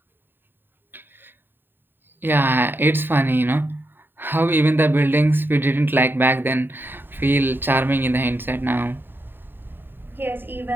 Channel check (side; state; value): left; late; 0.096 ms